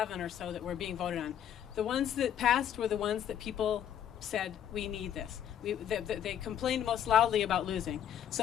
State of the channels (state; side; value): quieter; right; 9.8 dB